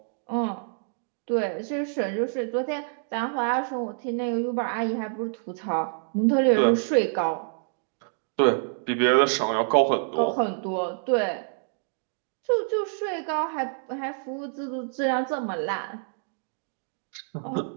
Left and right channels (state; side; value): silent; left; digital silence